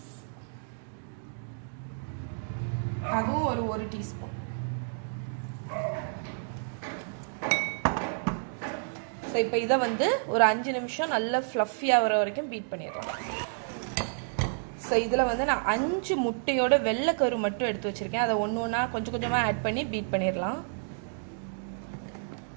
அதுவும் ஒரு டீஸ்பூன். ஸோ இப்போ இதை வந்து ஒரு 5 நிமிஷம் நல்லா ஃப்ளஃபி ஆகிற வரைக்கும் பீட் பண்ணிடலாம். ஸோ இதில் வந்து நான் 5 முட்டையோட வெள்ளைக்கரு மட்டும் எடுத்து வச்சுருக்கேன். அதை ஒன்றா கொஞ்சம் கொஞ்சமாக ஆட் பண்ணி பீட் பண்ணிடலாம்.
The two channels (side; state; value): left; silent; digital silence